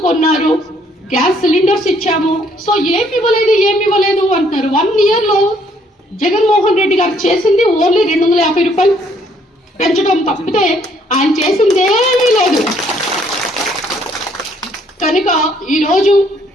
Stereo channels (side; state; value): both; normal; correlation 0.66